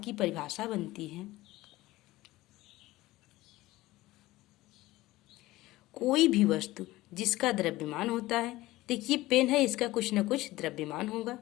की परिभाषा बनती है कोई भी वस्तु जिसका द्रव्यमान होता है। देखिए पेन है, इसका कुछ न कुछ द्रव्यमान होगा।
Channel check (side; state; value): right; quieter; 17.9 dB